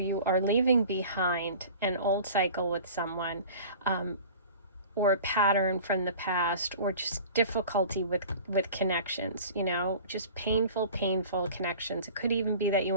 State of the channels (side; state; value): both; inverted; correlation -0.42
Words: are leaving behind an old cycle with someone, or a pattern from the past, or just difficulty with connections, you know, just painful connections. It could even be that you